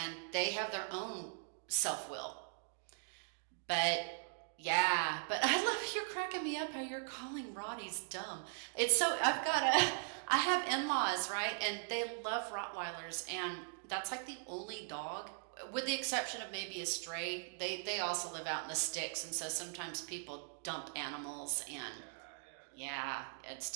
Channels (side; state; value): left; silent; digital silence